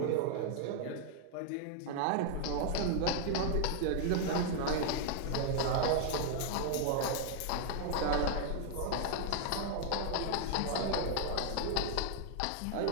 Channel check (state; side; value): different; both; correlation 0.00